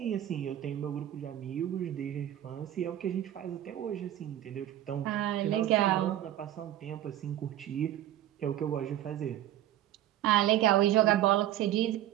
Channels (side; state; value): left; quieter; 12.4 dB